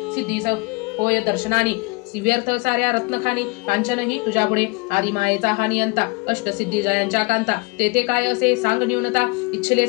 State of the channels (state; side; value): quieter; right; 27.2 dB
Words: सिद्धीस होय दर्शनानी व्यर्थ साऱ्या रत्नखानी कांचनही तुझ्या पुढे आदी मायेचा हा नियंता अष्टसिद्धी जयांच्या कांता तेथे काय असे सांग न्यूनता इच्छिले